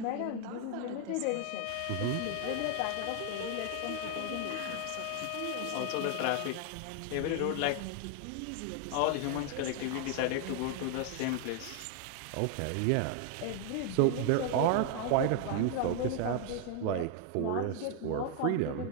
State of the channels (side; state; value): both; different; correlation 0.00